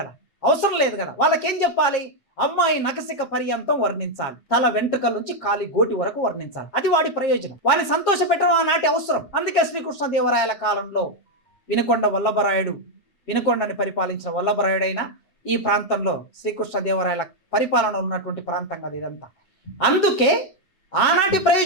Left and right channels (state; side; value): late; right; 7.5 ms